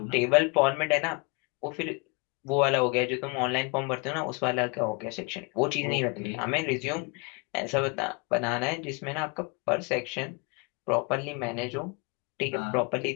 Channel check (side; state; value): right; quieter; 31.0 dB